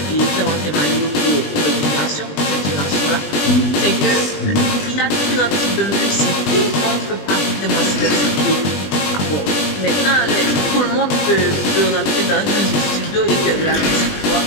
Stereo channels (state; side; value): late; right; 20 ms